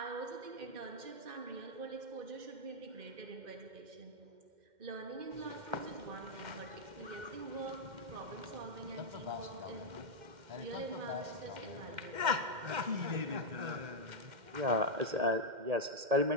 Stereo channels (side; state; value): left; late; 2.1 ms